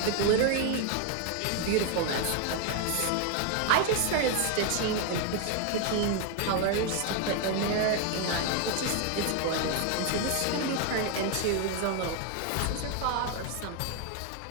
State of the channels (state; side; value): different; both; correlation 0.01